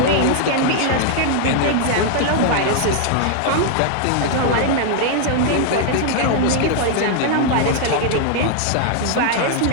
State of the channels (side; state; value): both; different; correlation 0.00